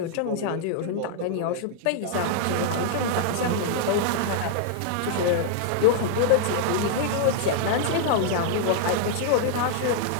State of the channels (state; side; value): different; both; correlation -0.01